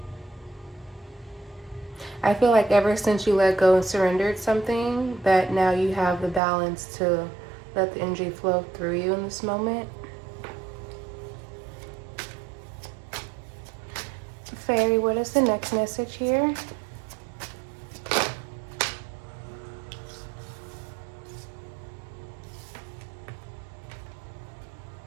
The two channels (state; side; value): drops out; left; at 6.4 s